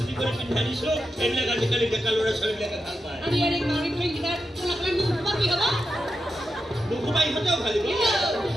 কৰে পিন্ধা দিছো এইবিলাক আজিকালি ডেকা ল'ৰা ছোৱালীবিলাকে ভাল পায় নুঘুমাই ইহঁতেও ভালিব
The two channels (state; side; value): normal; both; correlation 0.88